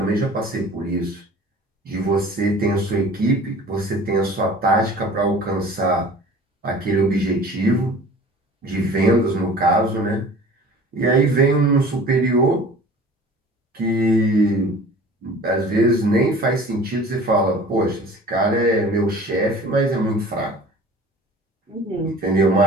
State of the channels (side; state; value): both; normal; correlation 0.44